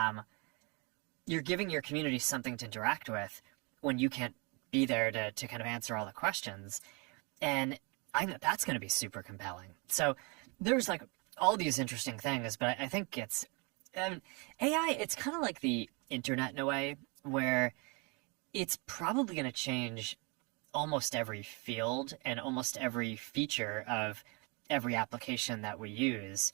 You're giving your community something to interact with when you can't be there to kind of answer all the questions. And I think that's going to be super compelling. So there's like all these interesting things, but I think it's AI. It's kind of like the internet in a way, where it's probably going to change almost every field and almost every feature of every application that we use.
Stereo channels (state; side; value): quieter; left; 30.9 dB